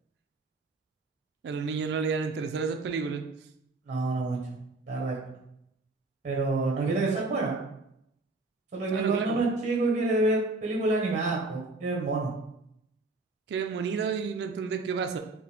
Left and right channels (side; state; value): left; quieter; 3.2 dB